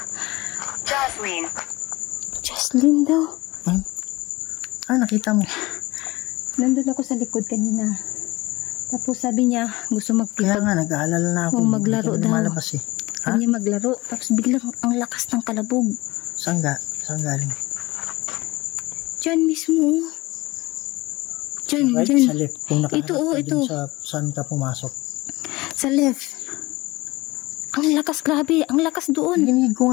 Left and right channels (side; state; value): right; quieter; 20.8 dB